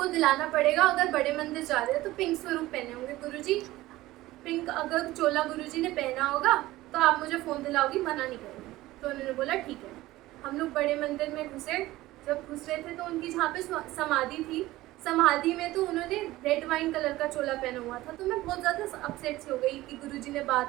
दिलाना पड़ेगा, अगर बड़े मंदिर जा रहे हो तो पिंक स्वरूप पहने होंगे गुरुजी, पिंक अगर चोला गुरुजी ने पहना होगा तो आप मुझे फ़ोन दिलाओगी, मना नहीं करोगी। तो उन्होंने बोला ठीक है। हम लोग बड़े मंदिर में घुसे। जब घुस रहे थे तो उनकी जहाँ पे समाधि थी, समाधि में तो उन्होंने रेड वाइन कलर का चोला पहना हुआ था। तो मैं बहुत ज़्यादा अपसेट सी हो गई कि गुरुजी ने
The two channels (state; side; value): quieter; left; 17.3 dB